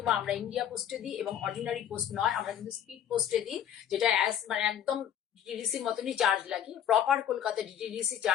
আমরা ইন্ডিয়া পোস্টে দিই, এবং অর্ডিনারি পোস্ট নয়, আমরা কিন্তু স্পিড পোস্টে দিই, যেটা মানে একদম ডিটিডিসির মতনই চার্জ লাগে। প্রপার কলকাতা ডিটিডিসি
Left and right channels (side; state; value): right; quieter; 9.8 dB